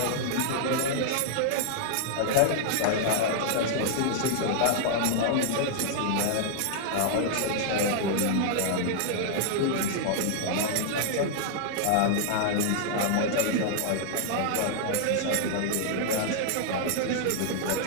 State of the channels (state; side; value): different; both; correlation -0.01